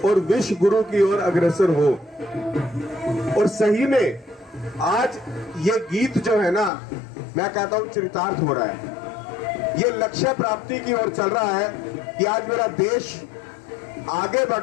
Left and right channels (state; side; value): drops out; right; at 6.7 s